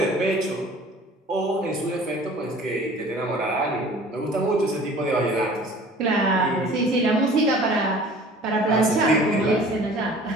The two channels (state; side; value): normal; both; correlation 0.47